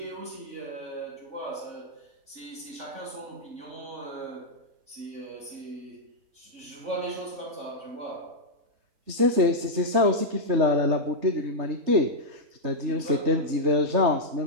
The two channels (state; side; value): late; left; 3.3 ms